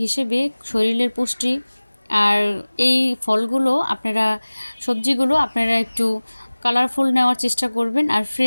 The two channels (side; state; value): both; inverted; correlation -1.00